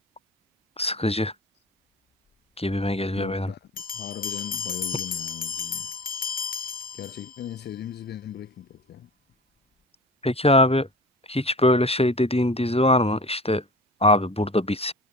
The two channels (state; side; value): normal; both; correlation 0.37